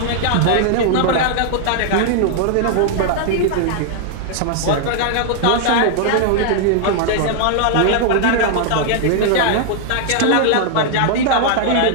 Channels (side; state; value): both; different; correlation -0.01